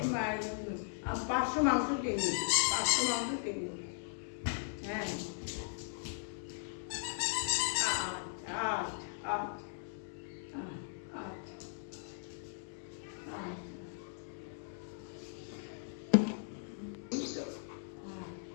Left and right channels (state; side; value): silent; right; digital silence